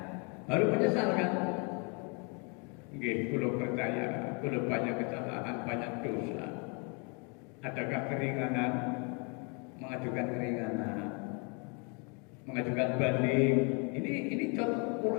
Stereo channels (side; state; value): right; quieter; 34.8 dB